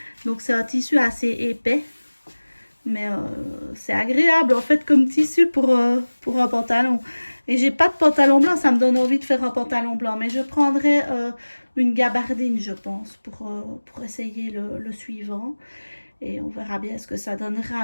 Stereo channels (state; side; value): inverted; both; correlation -1.00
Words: Donc, c'est un tissu assez épais. Mais c'est agréable, en fait, comme tissu pour un pantalon. Et j'ai pas de pantalon blanc, ça me donne envie de faire un pantalon blanc. Mais je prendrai une gabardine, je pense, pour essayer le suivant. Et on verra bien ce que ça